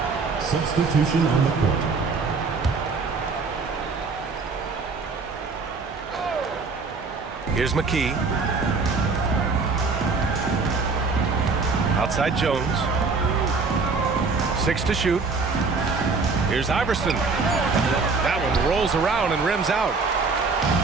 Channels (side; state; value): left; quieter; 4.3 dB